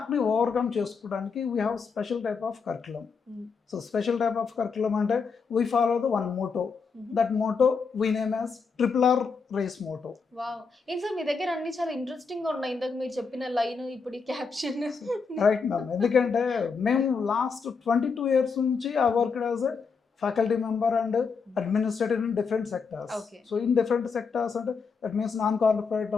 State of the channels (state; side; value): quieter; right; 5.2 dB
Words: ఓవర్కమ్ చేసుకోవడానికి we have special type of curriculum. So special type of curriculum అంటే we follow the one motto. That motto we name as RRR race motto. Wow, ఏం సార్ మీ దగ్గర అన్ని చాలా ఇంట్రెస్టింగ్ ఉన్నాయి. ఇందాక మీరు చెప్పిన లైన్, ఇప్పుడు ఈ క్యాప్షన్. రైట్ మ్యామ్, ఎందుకంటే మేము లాస్ట్ 22 years నుంచి I worked as a faculty member and administrator in different sectors. So in different sectors అంటే దట్ మీన్స్ నాన్ కార్పొరేట్